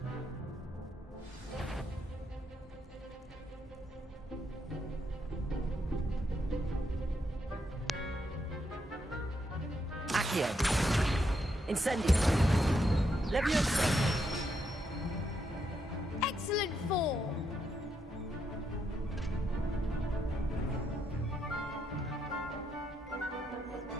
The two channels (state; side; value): normal; both; correlation 0.79